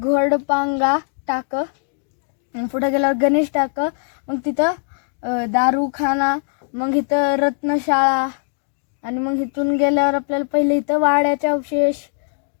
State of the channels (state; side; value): silent; right; 66 dB below the other